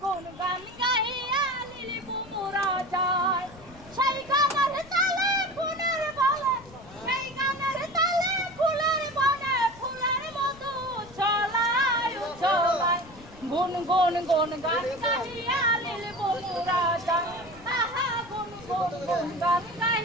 গুন গান গাইয়া নীল মোরা যায় সেই গানের তালে ফুলের বনে সেই গানের তালে ফুলের বনে ফুলের মতো চলায় চলায় গুন গুন গুন গান গাইয়া নীল মোরা যায় আহা গুন গুন গুন গান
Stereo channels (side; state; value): left; noise; rumble, 21 dB below the sound